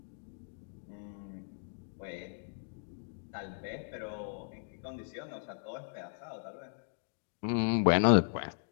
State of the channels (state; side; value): silent; right; digital silence